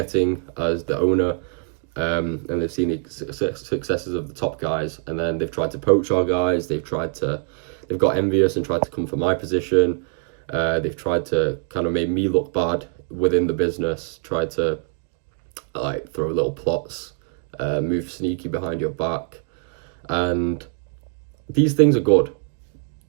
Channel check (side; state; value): left; quieter; 36.2 dB